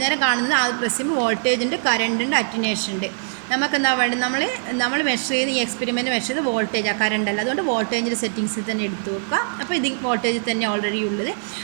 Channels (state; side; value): silent; left; digital silence